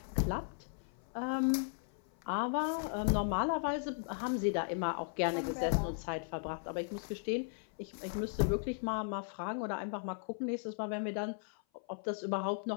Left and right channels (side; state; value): right; silent; 53 dB below the other